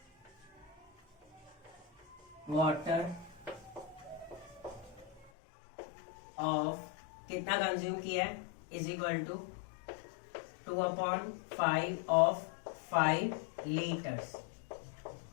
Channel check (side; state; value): right; drops out; at 5.3 s